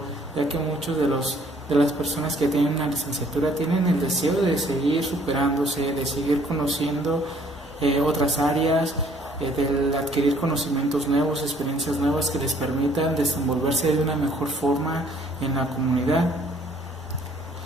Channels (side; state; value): both; normal; correlation 0.60